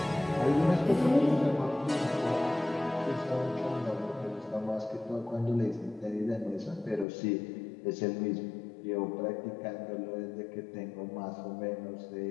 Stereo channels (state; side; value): drops out; right; at 7.1 s